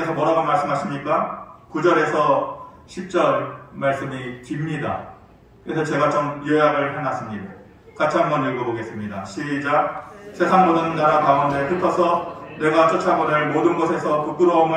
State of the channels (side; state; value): both; identical; correlation 1.00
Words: 뭐라고 말씀하십니까? 9절에서 10절 말씀이 깁니다. 그래서 제가 좀 요약을 해놨습니다. 같이 한번 읽어보겠습니다. 시작. 세상 모든 나라 가운데 흩어서 내가 쫓아보낼 모든 곳에서